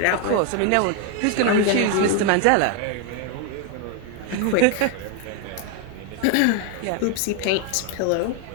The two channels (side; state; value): both; different; correlation 0.01